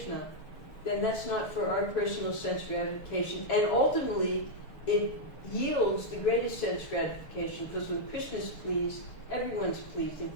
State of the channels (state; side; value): late; right; 6.7 ms